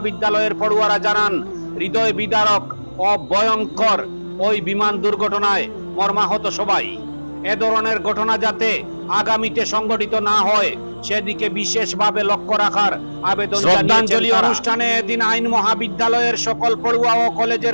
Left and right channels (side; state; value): both; inverted; correlation -1.00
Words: পড়ুয়ারা জানান, হৃদয় বিদারক ও ভয়ঙ্কর ওই বিমান দুর্ঘটনায় মর্মাহত সবাই। এ ধরনের ঘটনা যাতে আগামীতে সংঘটিত না হয় সেদিকে বিশেষভাবে লক্ষ্য রাখার আবেদন শ্রদ্ধাঞ্জলি অনুষ্ঠানে এদিন আইন মহাবিদ্যালয়ের সকল পড়ুয়া ও কলেজের